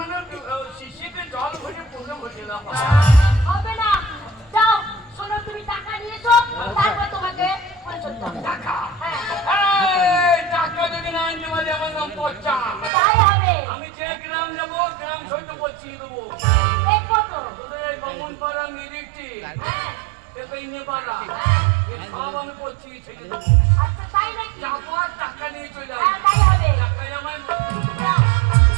শিশিতে জল ভরে পুরো ভরে দাও হবে না, যাও শোনো তুমি টাকা নিয়ে এসো, তারপর তোমাকে ফুলসজ্জা হবে। টাকা হ্যাঁ এই টাকা যদি না আনতে পারি আমার নাম পচ্চা তাই হবে। আমি যে গ্রাম যাবো গ্রাম সইতে পচিয়ে দেবো দেখবো তো। তোদের এই বামুন পাড়া নিরিখটি হ্যাঁ এ পাড়া এ সব আমি পচিয়ে ছেড়ে দেবো আচ্ছা তাই নাকি? যাবো আর টাকা নিয়ে চলে হ্যাঁ আসবো তাই হবে। টাকাই আমার যাও।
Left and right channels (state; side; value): drops out; left; at 12.9 s